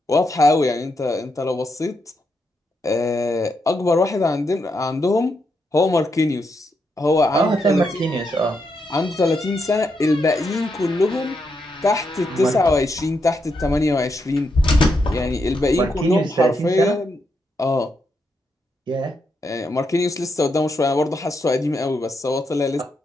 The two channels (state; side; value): normal; both; correlation 0.81